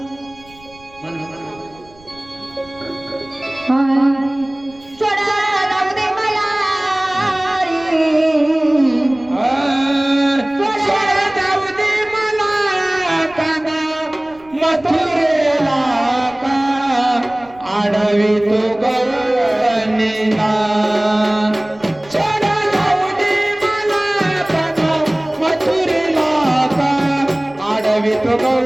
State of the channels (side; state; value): right; noise; rumble, 26 dB below the sound